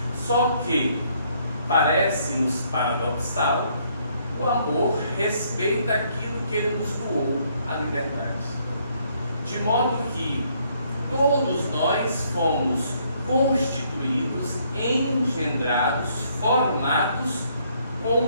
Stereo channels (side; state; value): both; inverted; correlation -0.68